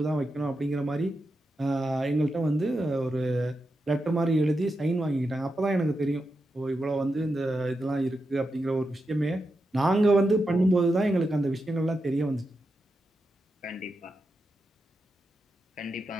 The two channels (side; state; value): both; normal; correlation 0.88